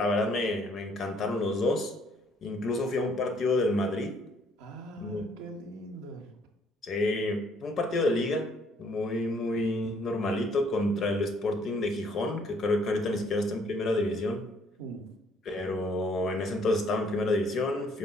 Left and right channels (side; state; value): both; normal; correlation 0.64